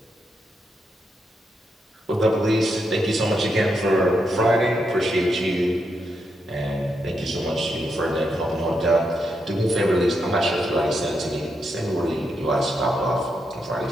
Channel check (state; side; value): normal; both; correlation 0.82